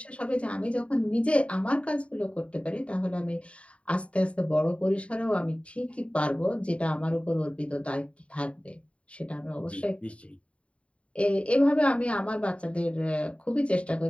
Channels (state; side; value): late; right; 0.063 ms